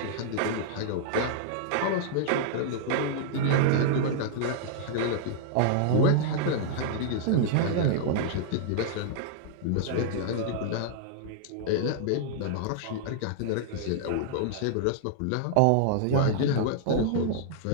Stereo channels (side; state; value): both; different; correlation -0.01